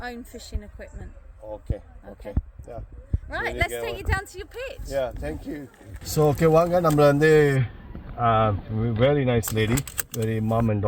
own fishing equipment. Okay. Okay. Yeah. Right, let's take you down to your pitch. Yeah, thank you. So, okay, வாங்க நம்மள வந்து very nice lady, very mom and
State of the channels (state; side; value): identical; both; correlation 1.00